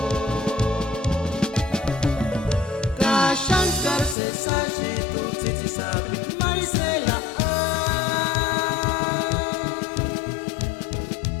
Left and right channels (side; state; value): right; drops out; at 4.2 s